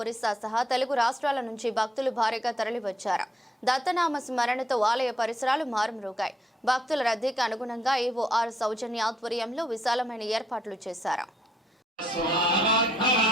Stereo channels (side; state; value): both; normal; correlation 0.73